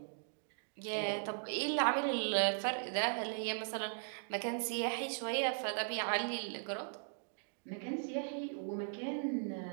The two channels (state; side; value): silent; left; digital silence